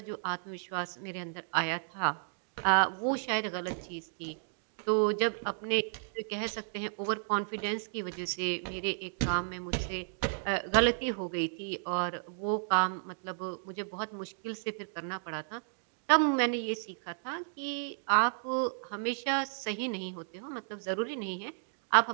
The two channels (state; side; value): silent; left; digital silence